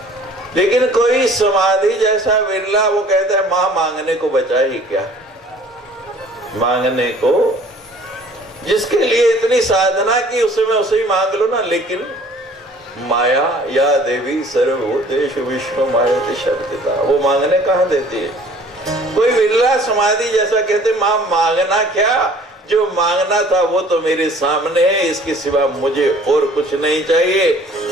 लेकिन कोई समाधि जैसा विरला, वो कहता है मां मांगने को बचा ही क्या, मांगने को जिसके लिए इतनी साधना की उसे मैं उसे ही मांग लो ना। लेकिन माया या देवी सर्वभूतेषु विष्णु मायते शब्दिता, वो मांगने कहाँ देती है। कोई विरला समाधि जैसा कहते मां मांगना क्या, जो मांगना था वो तो मेरे सामने है, इसके सिवा मुझे और कुछ नहीं चाहिए।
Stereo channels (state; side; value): normal; both; correlation 0.52